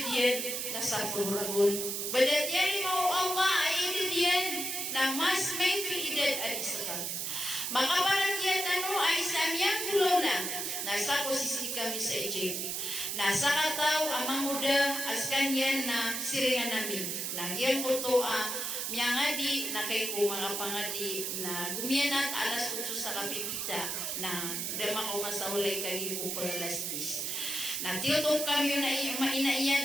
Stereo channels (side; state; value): right; noise; hiss, 2 dB below the sound